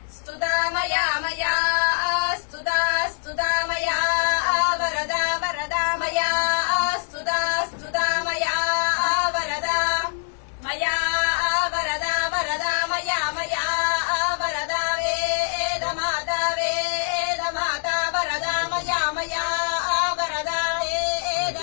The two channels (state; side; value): silent; right; digital silence